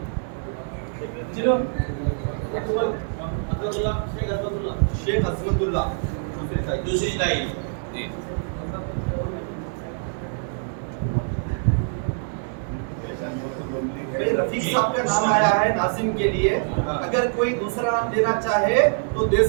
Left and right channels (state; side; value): silent; left; 62 dB below the other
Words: شیخ عظمت اللہ دوسری تائید. جی بھائی رفیق صاحب کا نام آیا ہے ناظم کے لیے. اگر کوئی دوسرا نام دینا چاہے تو دے